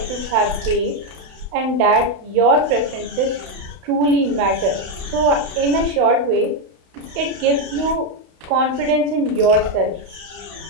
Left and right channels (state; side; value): late; left; 32 ms